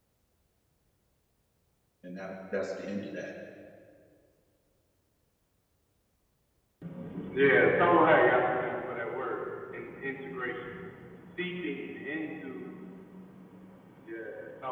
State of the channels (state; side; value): identical; both; correlation 1.00